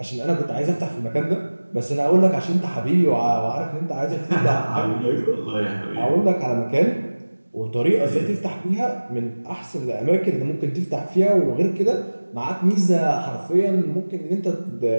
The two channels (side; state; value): both; inverted; correlation -1.00